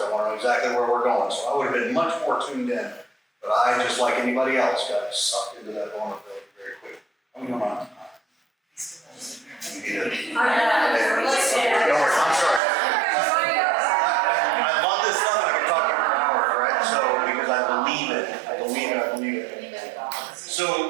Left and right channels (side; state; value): left; drops out; at 12.6 s